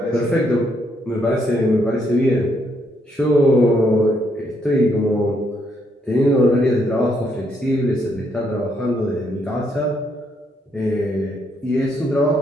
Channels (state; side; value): normal; both; correlation 0.74